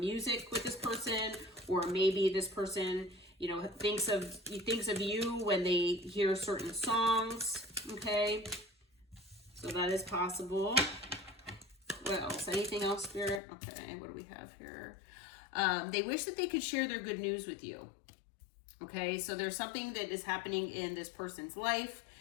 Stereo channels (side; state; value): right; drops out; at 13.4 s